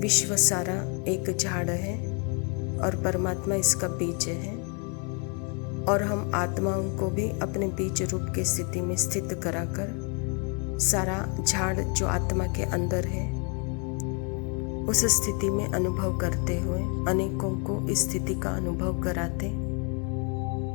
विश्व सारा एक झाड़ है और परमात्मा इसका बीज है, और हम आत्माओं को भी अपने बीज रूप की स्थिति में स्थित कराकर सारा झाड़ जो आत्मा के अंदर है उस स्थिति में अनुभव करते हुए अनेकों को इस स्थिति का अनुभव कराते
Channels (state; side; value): quieter; right; 36.9 dB